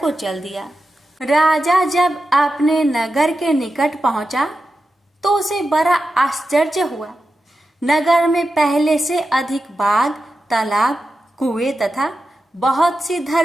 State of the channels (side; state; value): both; normal; correlation 0.91